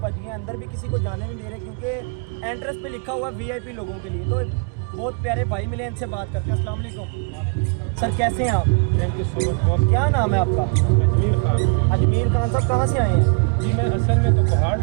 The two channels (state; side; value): quieter; left; 33.1 dB